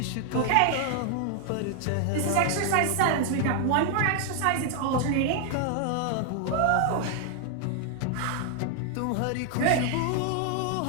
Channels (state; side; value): different; both; correlation 0.00